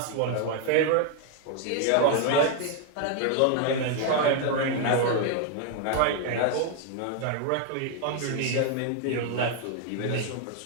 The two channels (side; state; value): both; different; correlation 0.00